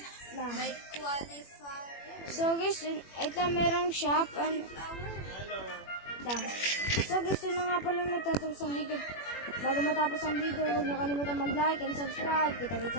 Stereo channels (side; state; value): right; late; 21 ms